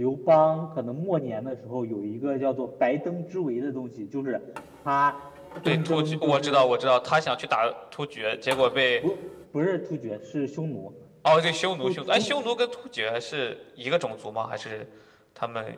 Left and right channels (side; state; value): both; identical; correlation 1.00